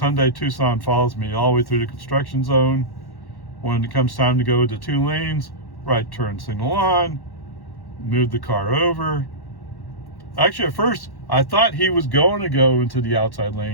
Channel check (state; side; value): late; right; 1.1 ms